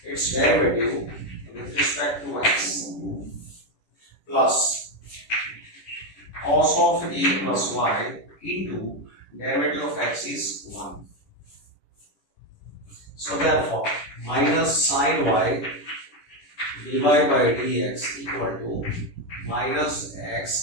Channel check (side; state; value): right; late; 10 ms